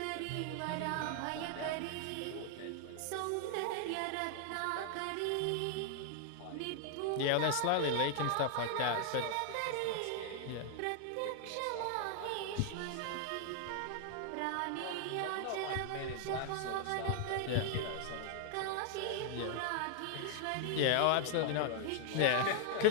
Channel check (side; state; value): both; different; correlation 0.00